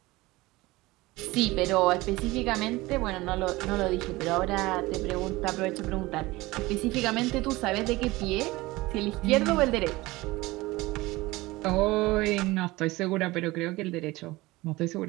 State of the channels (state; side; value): quieter; left; 20.3 dB